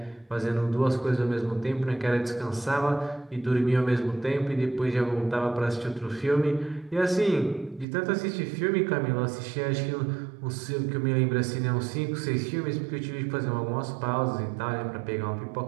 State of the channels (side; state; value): left; drops out; at 7.9 s